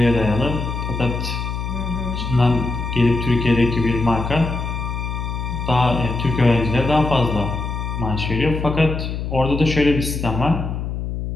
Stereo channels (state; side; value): noise; left; hum, 4 dB below the sound